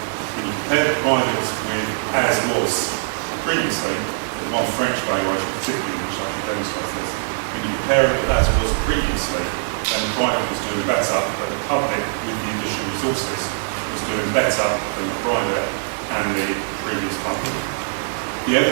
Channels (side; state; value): left; silent; digital silence